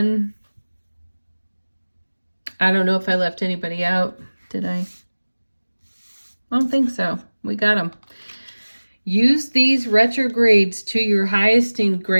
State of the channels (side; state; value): both; inverted; correlation -1.00